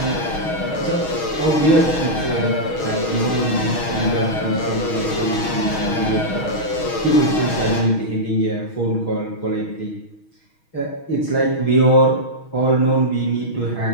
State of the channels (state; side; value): late; right; 6.3 ms